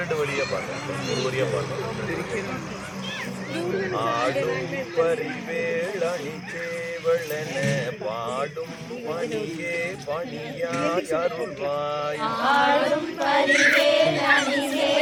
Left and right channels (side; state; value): both; identical; correlation 1.00